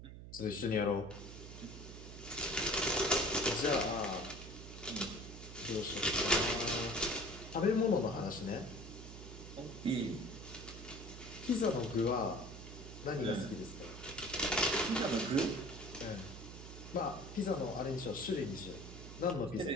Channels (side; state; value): right; noise; hum, 12 dB below the sound